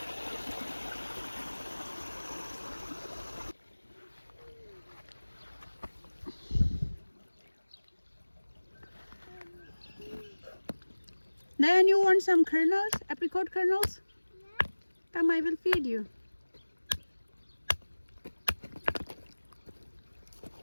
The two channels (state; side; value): inverted; both; correlation -1.00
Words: Then you want some kernels, apricot kernels? Yeah. Come, I will feed you.